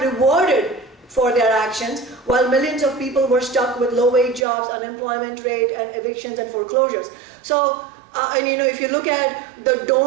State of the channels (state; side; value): drops out; left; at 4.5 s